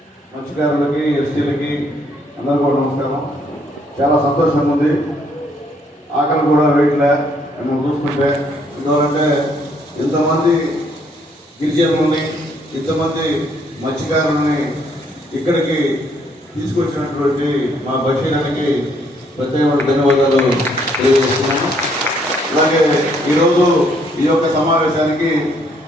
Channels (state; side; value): normal; both; correlation 0.68